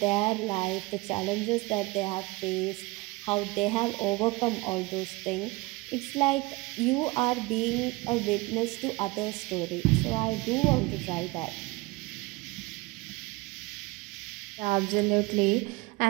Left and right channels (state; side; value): quieter; left; 23.3 dB